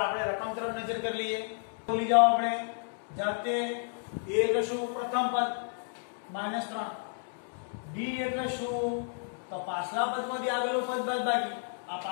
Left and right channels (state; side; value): silent; right; digital silence